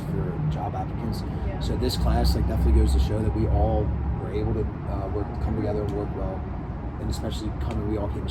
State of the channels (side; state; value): both; identical; correlation 1.00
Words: for job applicants. Yeah. So this class like definitely goes to show that we all were able to come together and work well, and especially we all came